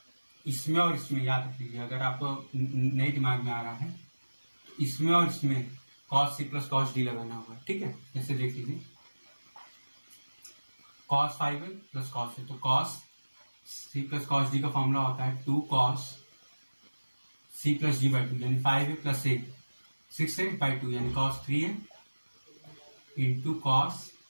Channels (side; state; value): both; inverted; correlation -1.00